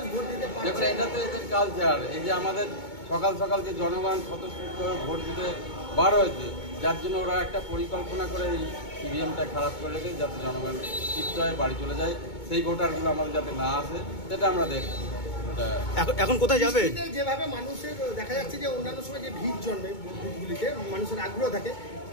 ভোট দিতে পারছে। দেখুন, এটা তো এদের কালচার। এই যে আমাদের সকাল সকাল যে জনগণ স্বতঃস্ফূর্ত ভোট দিতে বার হয়েছে, যার জন্য ওরা একটা পরিকল্পনা করে এই ইভিএমটা খারাপ করে রেখে যাতে জনগণ শিফট হয়, বাড়ি চলে যায়, সেই ভোটারগুলো আমাদের যাতে না আসে, সেটা আমরা দেখছি। এখন কোথায় যাবে? যেভাবে মানুষের দেখা যাচ্ছে যে অন্যান্য সময় যে ভিড় জন্মে বুথগুলিতে, মানুষের আগ্রহ থাকে,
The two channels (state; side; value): late; right; 2.2 ms